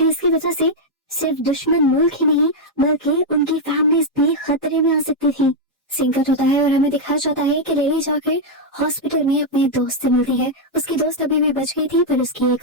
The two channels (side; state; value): both; normal; correlation -0.02